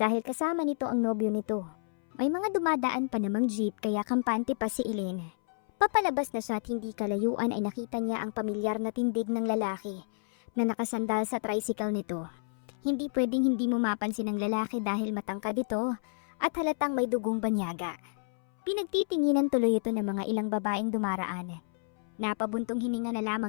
kasama nito ang nobyo nito. May mga dumadaan pa namang jeep kaya kampante pa si Elaine. Papalabas na siya at hindi kalayuan ay nakita niya ang pamilyar na tindig ng lalaki na nakasandal sa tricycle nito. Hindi pwedeng hindi mo mapansin ang lalaki dahil matangkad ito at halatang may dugong banyaga. Pinagtitinginan tuloy ito ng mga ilang babaeng dumaraan. Napabuntong hininga na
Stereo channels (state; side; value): silent; right; 58 dB below the other